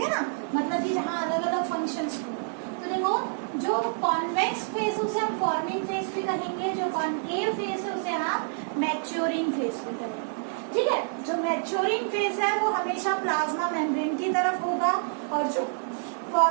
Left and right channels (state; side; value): silent; left; digital silence